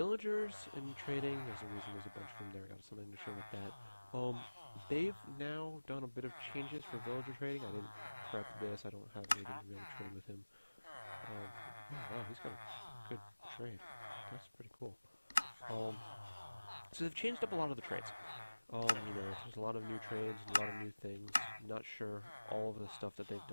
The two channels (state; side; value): inverted; both; correlation -1.00